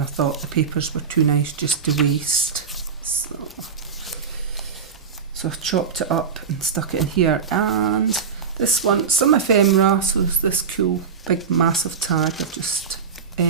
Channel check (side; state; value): left; quieter; 6.2 dB